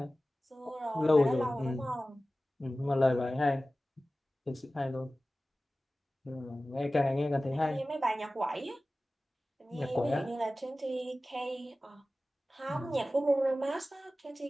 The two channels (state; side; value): normal; both; correlation 0.96